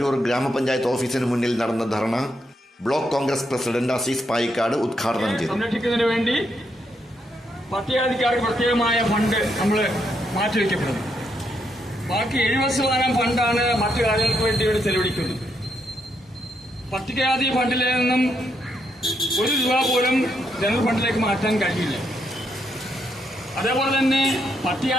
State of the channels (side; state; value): both; normal; correlation 0.78